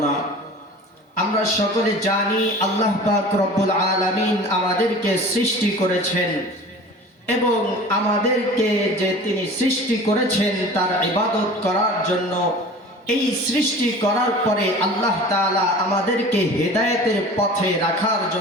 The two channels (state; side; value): normal; both; correlation 0.40